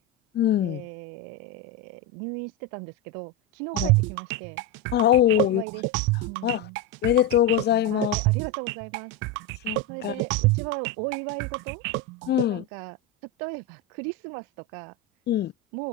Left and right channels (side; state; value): both; normal; correlation 0.10